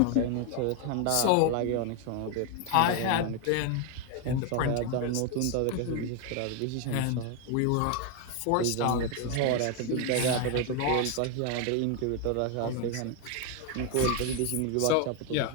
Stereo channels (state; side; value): different; both; correlation 0.01